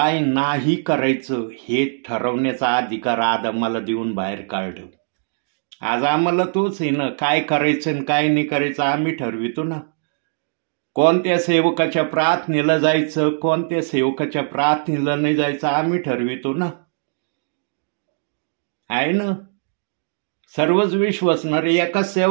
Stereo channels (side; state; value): left; silent; digital silence